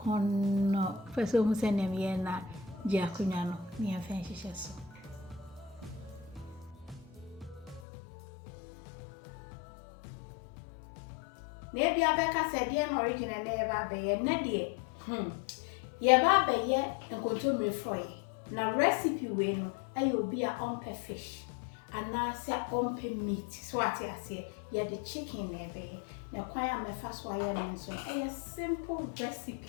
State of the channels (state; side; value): drops out; right; at 7.8 s